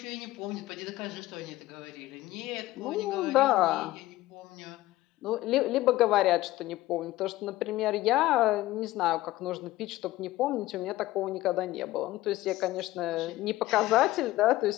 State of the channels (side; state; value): right; quieter; 17.0 dB